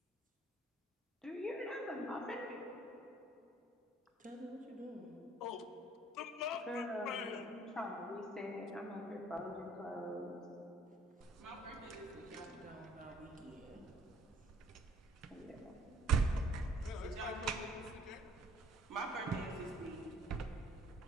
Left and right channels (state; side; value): normal; both; correlation 0.58